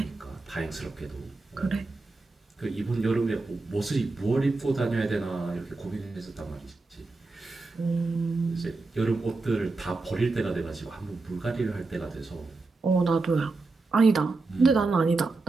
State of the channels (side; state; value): left; quieter; 3.6 dB